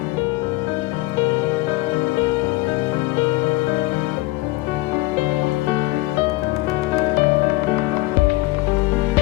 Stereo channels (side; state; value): right; quieter; 19.9 dB